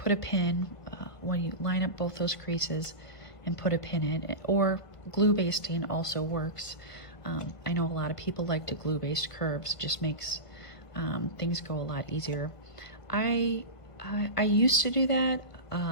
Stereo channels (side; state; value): right; late; 1.5 ms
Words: a pin when you line up both those creases, and put a pin in, or glue basting also works. I know a lot of people like to glue baste curves, just makes things go a lot easier. I used to do that.